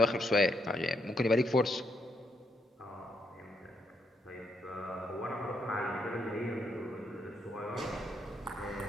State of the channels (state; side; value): normal; both; correlation 0.77